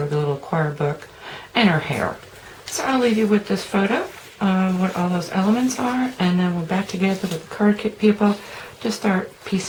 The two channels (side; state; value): both; identical; correlation 1.00